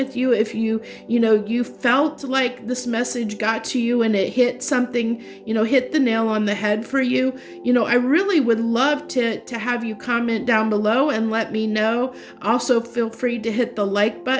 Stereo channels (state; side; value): identical; both; correlation 1.00